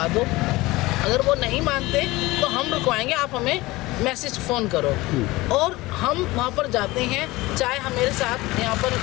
दो, अगर वो नहीं मानते तो हम रुकवाएंगे, आप हमें मैसेज फ़ोन करो। और हम वहाँ पर जाते हैं, चाहे हम मेरे साथ यहाँ पर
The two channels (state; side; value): quieter; right; 20.1 dB